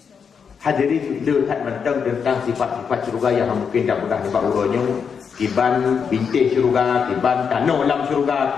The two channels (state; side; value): quieter; right; 6.5 dB